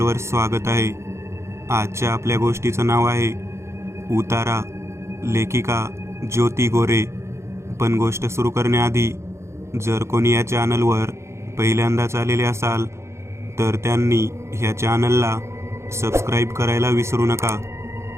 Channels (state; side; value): late; left; 0.13 ms